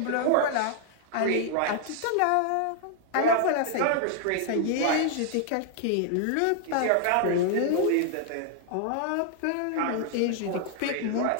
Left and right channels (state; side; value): different; both; correlation 0.00